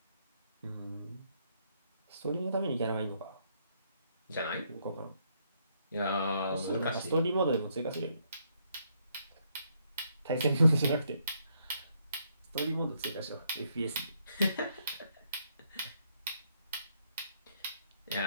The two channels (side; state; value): both; inverted; correlation -0.73